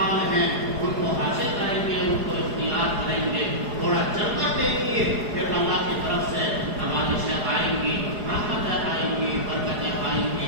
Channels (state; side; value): late; left; 4.8 ms